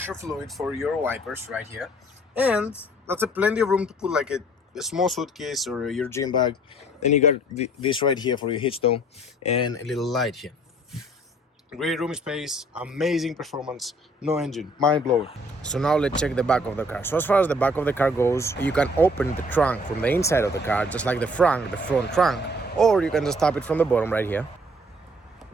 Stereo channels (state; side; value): normal; both; correlation 0.57